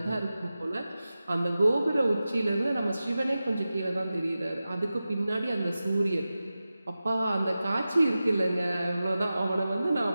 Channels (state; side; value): inverted; both; correlation -0.94